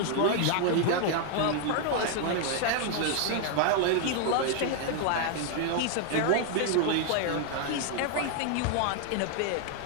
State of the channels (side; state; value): both; different; correlation 0.00